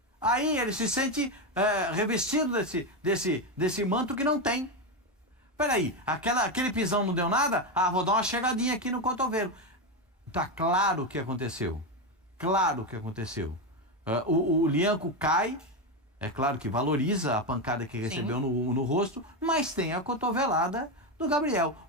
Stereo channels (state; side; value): normal; both; correlation 0.11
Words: Aí ele se sente revestido desse manto que não tem. Peraí, aquele pisão não deu nada? Vou dar uma chegadinha aqui no cotovelo. Tá claro o que aconteceu. Claro o que aconteceu. O Lianco cai, é claro que valoriza a pancada que recebeu no rosto, mas tem a cotovelada do Gabriel.